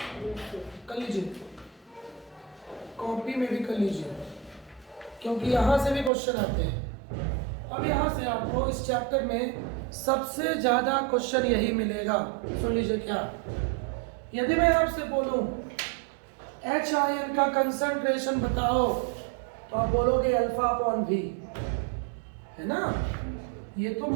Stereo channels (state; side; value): drops out; left; at 6.1 s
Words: कर लीजिए, कॉपी में भी कर लीजिए, क्योंकि यहां से भी क्वेश्चन आते हैं। अब यहां से आपको इस चैप्टर में सबसे ज्यादा क्वेश्चन यही मिलेगा, सुन लीजिए। क्या यदि मैं आपसे बोलूं H आयन का कंसंट्रेशन बताओ, तो आप बोलोगे अल्फा अपॉन V, है ना। ये तो